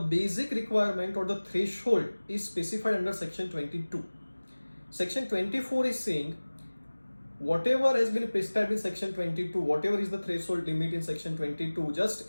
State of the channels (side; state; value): both; inverted; correlation -1.00